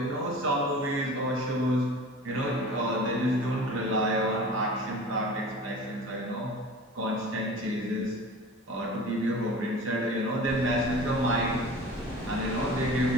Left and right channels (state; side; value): normal; both; correlation 0.39